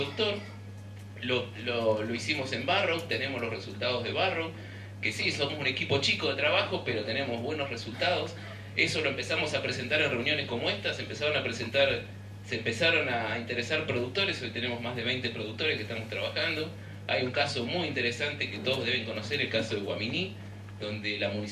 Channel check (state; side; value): identical; both; correlation 1.00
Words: Lo hicimos en Barrow, tenemos los resultados de Barrow, que sí, somos un equipo chico de trabajo, pero tenemos buenos resultados. Eso lo empezamos a presentar en reuniones como estas, se empezaron a interesar productores, hoy tenemos más de 20 productores que estamos trabajando. Hay un caso muy interesante que todos deben conocer, el caso de Guaminí, donde la